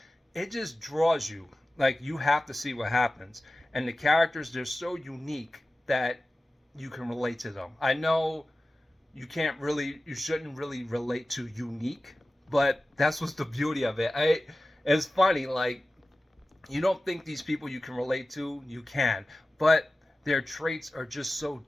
it just draws you. You have to see what happens. And the characters, they're so unique that you can relate to them. I know you shouldn't really relate to unique, but that's what's the beauty of it. It's funny, you don't think these people you can relate to, you can, but their traits are just so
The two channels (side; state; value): both; normal; correlation 0.95